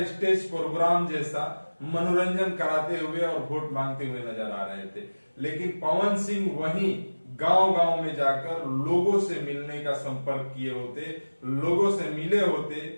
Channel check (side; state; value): both; inverted; correlation -1.00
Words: स्टेज प्रोग्राम जैसा मनोरंजन कराते हुए और वोट मांगते हुए नजर आ रहे थे। लेकिन पवन सिंह वहीं गांव गांव में जाकर लोगों से मिलने का संपर्क किए होते, लोगों से मिले होते,